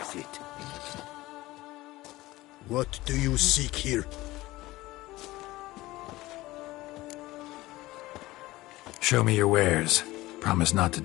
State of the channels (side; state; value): right; quieter; 18.5 dB